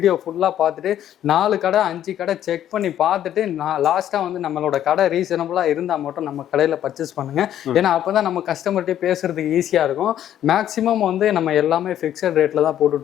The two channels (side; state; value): right; quieter; 11.1 dB